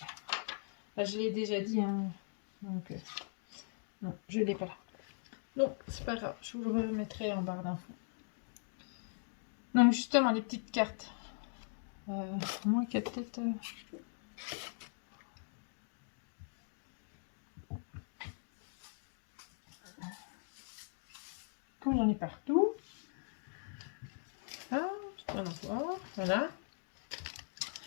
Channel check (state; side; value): silent; right; digital silence